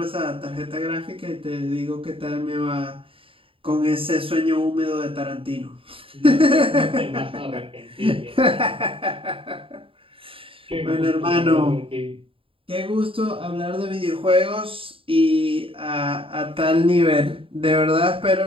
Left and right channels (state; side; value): late; left; 0.26 ms